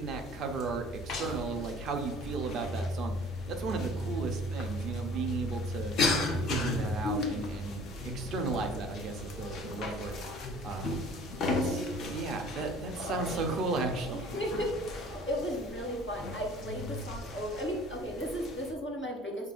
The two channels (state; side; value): normal; both; correlation 0.49